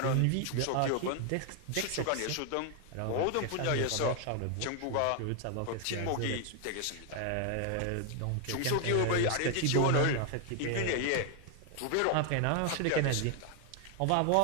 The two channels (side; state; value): both; different; correlation 0.00